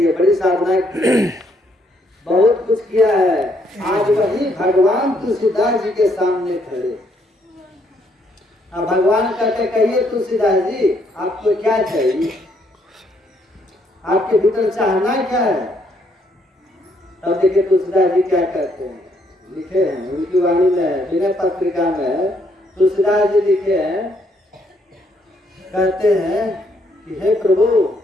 है, बड़ी साधना की है, बहुत कुछ किया है। आज वही भगवान तुलसीदास जी के सामने खड़े। अब भगवान कहते कहिए तुलसीदास जी आपको क्या चाहिए, आपके भीतर चाहना क्या है। तब देखिए तुलसीदास जी क्या कहते हैं, लिखे हैं उनकी वाणी में, विनय पत्रिका में तुलसीदास जी लिखे हैं, कहते हैं कि हे प्रभु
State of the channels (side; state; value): both; normal; correlation 0.71